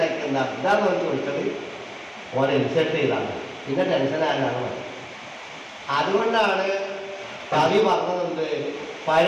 എന്താ ഇതാന്ന് പറഞ്ഞ് ചോദിച്ചത് ഓനെ ഇൻസൾട്ട് ചെയ്താണ് പിന്നെ ടെൻഷനാകാനാണ്. അതുകൊണ്ടാണ് കവി പറഞ്ഞതുണ്ട്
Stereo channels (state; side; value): identical; both; correlation 1.00